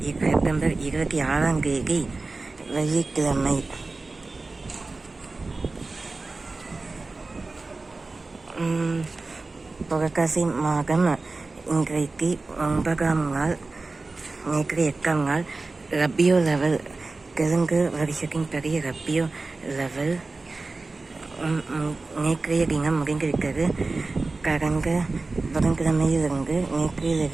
செப்டம்பர் 26ஆம் தேதி வெள்ளிக்கிழமை. புரட்டாசி மாதம் இன்றைக்கு 9ஆம் நாள், நேற்று 8ஆம் நாள். ரபியோ லெவல், தெலுங்கு வருஷத்தின் படி ரபியோ லெவல் நேற்றைய தினம் முடிந்திருக்கிறது. கடந்த புதன்கிழமையிலிருந்து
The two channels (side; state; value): left; quieter; 3.6 dB